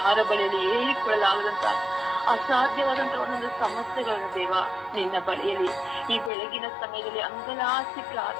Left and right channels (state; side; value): drops out; right; at 6.3 s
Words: ಬಳಿಯಲ್ಲಿ ಹೇಳಿಕೊಳ್ಳಲಾಗದಂತ ಅಸಾಧ್ಯವಾದಂತಹ ಒಂದೊಂದು ಸಮಸ್ಯೆಗಳನ್ನು ದೇವ ನಿನ್ನ ಬಳಿಯಲ್ಲಿ ಈ ಬೆಳಗಿನ ಸಮಯದಲ್ಲಿ ಅಂಗಲಾಸಿ